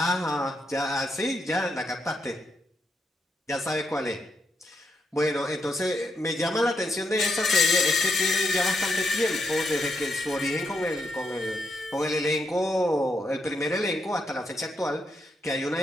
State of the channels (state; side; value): normal; both; correlation 0.81